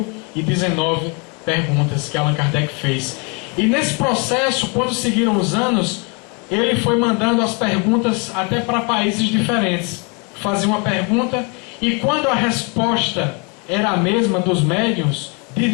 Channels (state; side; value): quieter; right; 33.0 dB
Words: perguntas que Allan Kardec fez. E nesse processo, quando seguiram os anos, ele foi mandando as perguntas até para países diferentes. Fazia uma pergunta, e quando a resposta era a mesma dos médiuns, de